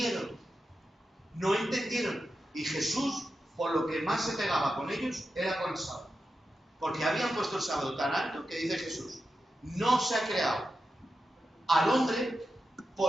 no entendieron. Y Jesús, por lo que más se pegaba con ellos, era con el sábado. Porque habían puesto el sábado tan alto que dice Jesús, no se ha creado al hombre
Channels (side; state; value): both; normal; correlation 0.90